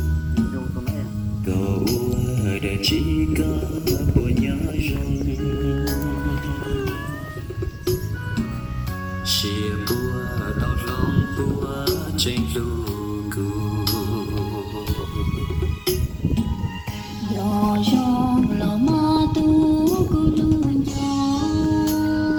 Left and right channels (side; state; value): both; identical; correlation 1.00